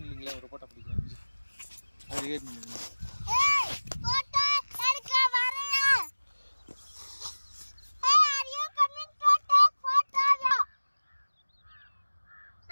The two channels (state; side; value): inverted; both; correlation -1.00